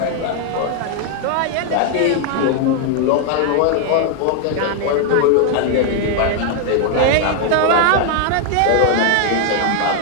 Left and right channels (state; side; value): different; both; correlation 0.00